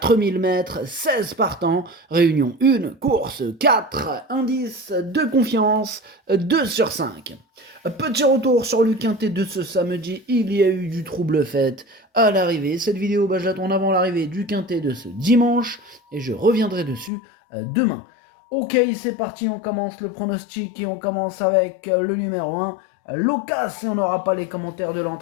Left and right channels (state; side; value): drops out; right; at 17.1 s